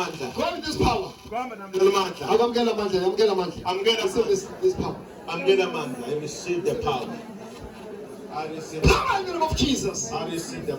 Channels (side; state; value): both; identical; correlation 1.00